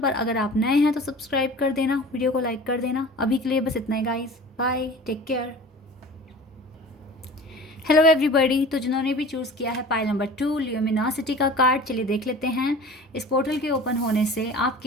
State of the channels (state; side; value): normal; both; correlation 0.40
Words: अगर आप नए हैं तो सब्सक्राइब कर देना, वीडियो को लाइक कर देना। अभी के लिए बस इतना ही guys, bye, take care. Hello everybody, तो जिन्होंने भी चूज़ किया है पाइल नंबर 2 ल्यूमिनोसिटी का कार्ड, चलिए देख लेते हैं इस पोर्टल के ओपन होने से